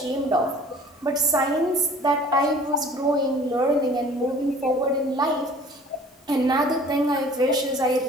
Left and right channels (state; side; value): normal; both; correlation 0.48